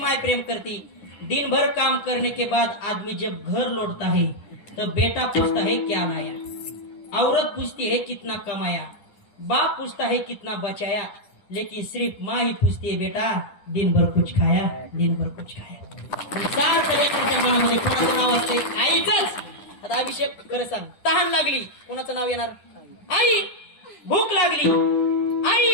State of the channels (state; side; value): late; right; 10 ms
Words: प्रेम करती. दिन भर काम करने के बाद आदमी जब घर लौटता है तो बेटा पूछता है क्या लाया, औरत पूछती है कितना कमाया, बाप पूछता है कितना बचाया, लेकिन सिर्फ माँ ही पूछती है बेटा दिन भर कुछ खाया, दिन भर कुछ खाया. सारखं लेकराच्या मनामध्ये कोणाचं नाव असते? आईचंच. आता अभिषेक खरं सांग, तहान लागली कोणाचं नाव येणार? आई. भूक लागली आई.